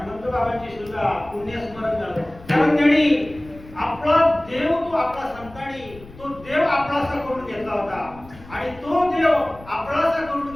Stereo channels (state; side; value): noise; left; rumble, 20 dB below the sound